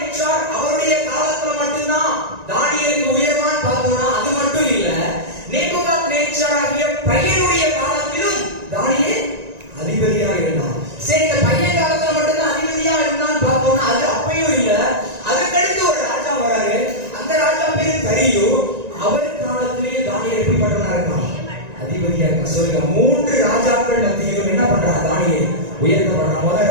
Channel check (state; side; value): late; left; 1.9 ms